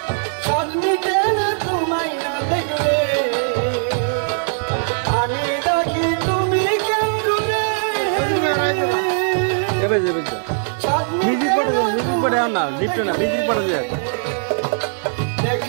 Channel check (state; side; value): silent; left; 58 dB below the other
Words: সজমিতে না তোমায় না দেখলে আমি ডাকি তুমি কেন্দুরে এবার যাবে মিউজিক পড়ে না লিফটে না মিউজিক পড়ে যায়